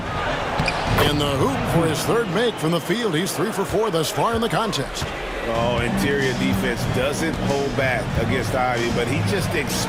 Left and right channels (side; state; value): both; identical; correlation 1.00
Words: In the hoop for his 3rd make from the field. He's 3 for 4 thus far in the contest. Oh, interior defense doesn't hold back against Ivy, but he just